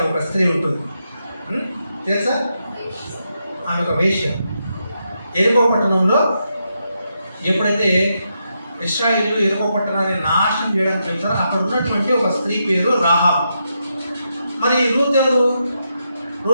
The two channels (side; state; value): both; inverted; correlation -0.83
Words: ఒక స్త్రీ ఉంటుంది, తెలుసా? ఆమె ఒక వేశ్య. ఎరుకో పట్టణంలో ఎప్పుడైతే ఇశ్రాయేలు ఎరుకో పట్టణాన్ని నాశనం చేయడానికి వెళ్తారో అక్కడ ఉన్నటువంటి ఒక స్త్రీ పేరు రాహాబు. మరి రూత్ ఎవరు?